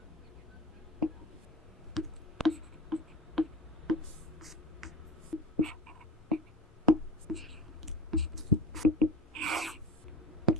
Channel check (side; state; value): both; normal; correlation 0.32